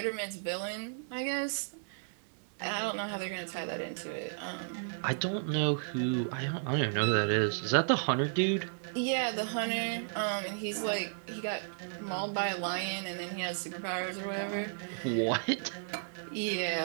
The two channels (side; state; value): left; silent; 55 dB below the other